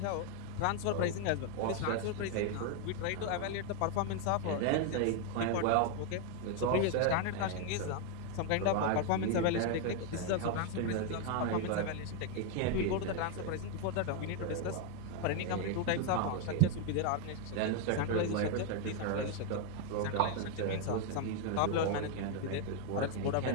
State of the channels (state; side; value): different; both; correlation 0.00